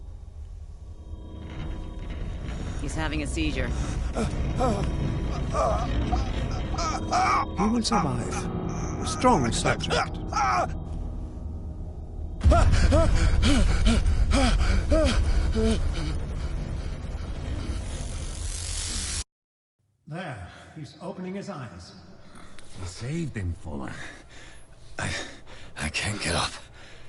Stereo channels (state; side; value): identical; both; correlation 1.00